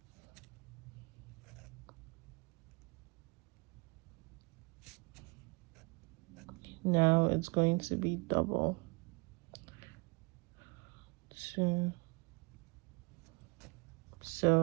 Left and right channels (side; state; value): left; quieter; 29.2 dB